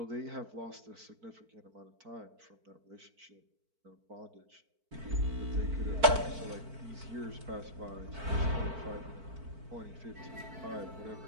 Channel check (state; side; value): late; left; 4.5 ms